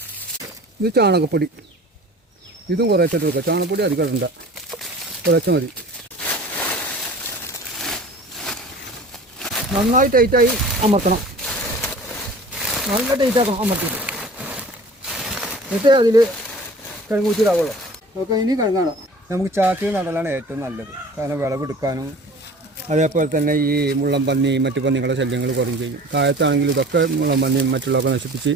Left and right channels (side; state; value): both; normal; correlation 0.43